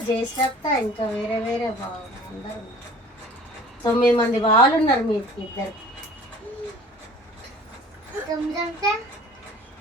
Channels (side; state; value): both; normal; correlation 0.47